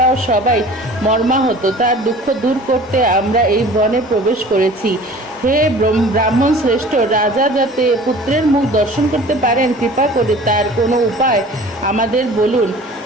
সবাই মর্মাহত। তার দুঃখ দূর করতে আমরা এই বনে প্রবেশ করেছি। হে ব্রাহ্মণ শ্রেষ্ঠ, রাজা যাতে পুত্রের মুখ দর্শন করতে পারেন, কৃপা করে তার কোনো উপায় আমাদের বলুন।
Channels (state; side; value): normal; both; correlation 0.45